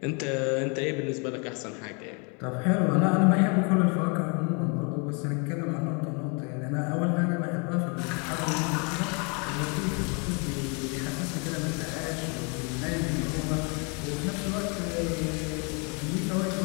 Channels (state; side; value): quieter; right; 34.4 dB